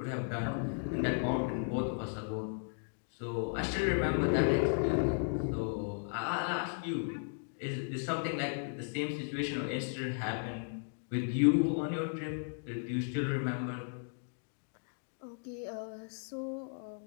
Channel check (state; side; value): silent; right; digital silence